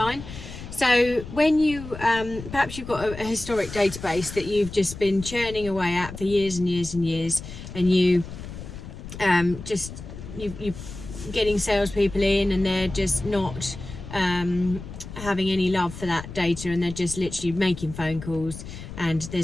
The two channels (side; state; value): left; noise; rumble, 12 dB below the sound